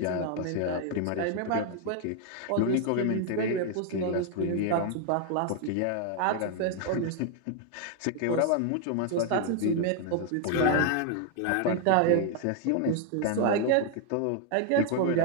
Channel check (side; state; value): both; different; correlation 0.00